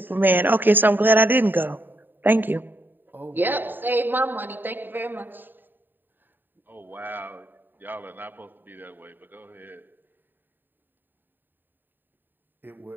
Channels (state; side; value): late; left; 0.092 ms